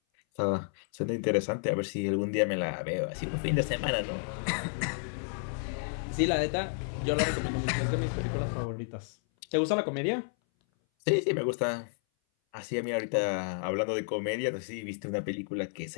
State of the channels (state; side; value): silent; right; 57 dB below the other